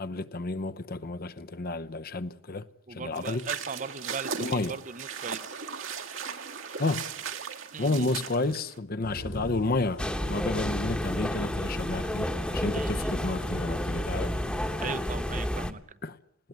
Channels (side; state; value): both; normal; correlation 0.54